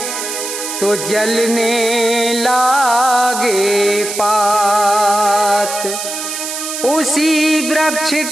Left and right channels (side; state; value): right; noise; hiss, 6 dB below the sound